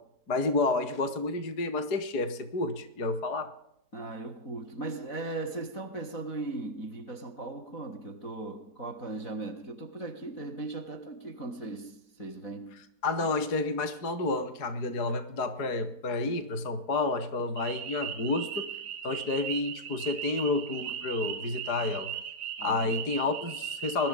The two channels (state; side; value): late; right; 4.7 ms